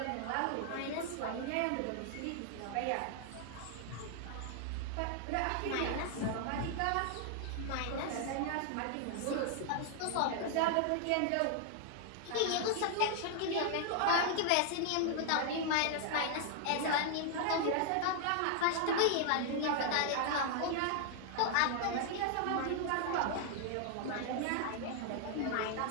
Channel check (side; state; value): both; different; correlation 0.00